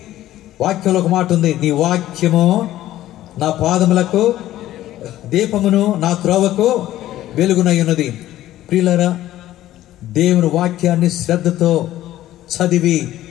వాక్యంలో ఒక మాట ఉంది, నీ వాక్యము నా పాదములకు దీపమును, నా త్రోవకు వెలుగునై ఉన్నది. ప్రియులారా, దేవుని వాక్యాన్ని శ్రద్ధతో చదివి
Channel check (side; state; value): right; quieter; 14.1 dB